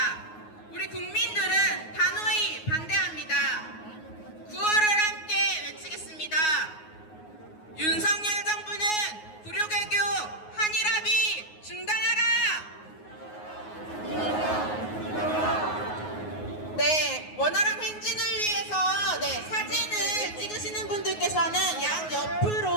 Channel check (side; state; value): right; late; 9.5 ms